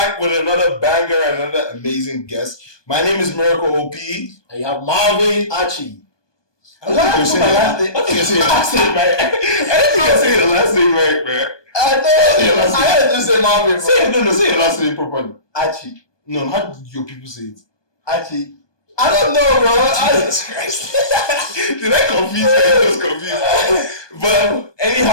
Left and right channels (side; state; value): right; late; 1.2 ms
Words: with another banger and another amazing guest. My name is Miracle OP. And you have Marvin Archie. I think you're saying your last name right. I think you're saying your last name right, man. I had to just say Marvin. Say your last name properly. Archie. No, how do your people say it? Archie. I don't know, bro. Jesus Christ. Did I confuse you? I was confused. But